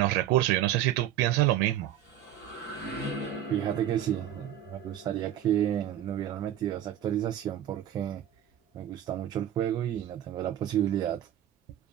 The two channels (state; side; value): quieter; left; 11.4 dB